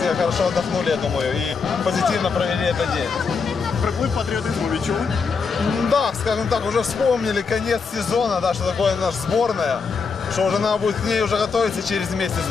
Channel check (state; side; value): quieter; right; 5.2 dB